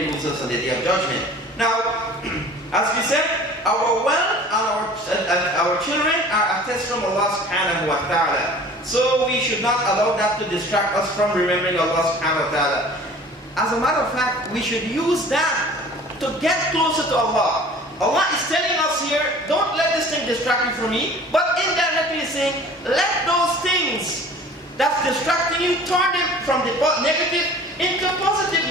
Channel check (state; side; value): normal; both; correlation 0.46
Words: losers on the Day of Judgment. Now, as we said, our wealth and our children are a test from Allah subhanahu wa ta'ala. So we should not allow that to distract us from remembering Allah subhanahu wa ta'ala. As a matter of fact, we should use that to get closer to Allah. Allah is telling us here, don't let this thing distract you from me, but indirectly saying, let those things that's distracting you, turn them from the negative into